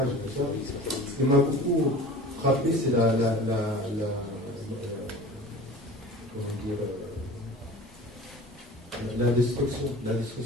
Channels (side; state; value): both; normal; correlation 0.40